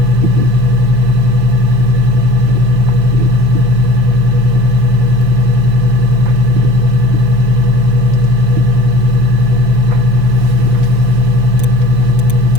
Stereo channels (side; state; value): left; late; 5.8 ms